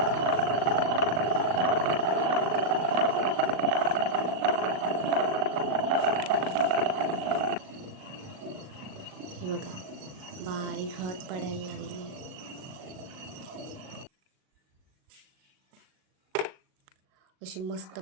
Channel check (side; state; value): left; late; 38 ms